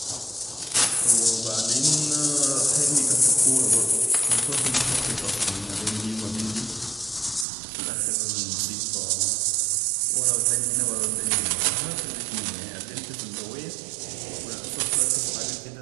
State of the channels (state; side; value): drops out; left; at 7.5 s